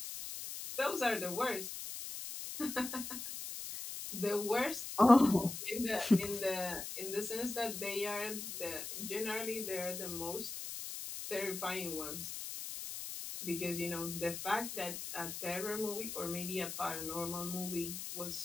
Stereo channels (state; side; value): noise; left; hiss, 7 dB below the sound